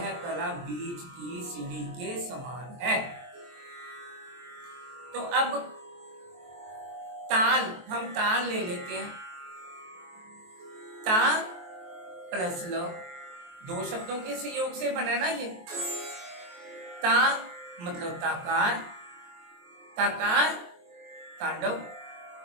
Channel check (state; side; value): late; left; 23 ms